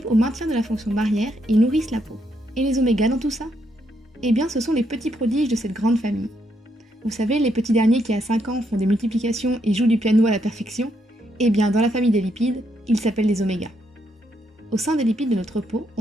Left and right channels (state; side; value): normal; both; correlation 0.76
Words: au maintien de la fonction barrière et nourrissent la peau. Et les omégas dans tout ça? Eh bien, ce sont les petits prodiges de cette grande famille. Vous savez, les petits derniers qui à 5 ans font des multiplications et jouent du piano à la perfection? Eh bien, dans la famille des lipides, ils s'appellent les omégas. Au sein des lipides de notre peau,